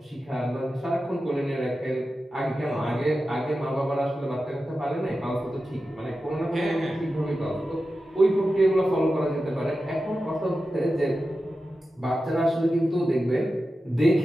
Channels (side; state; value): both; normal; correlation 0.92